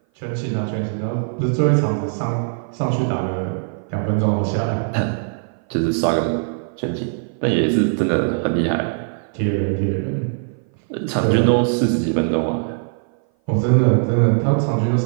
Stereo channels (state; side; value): silent; left; 57 dB below the other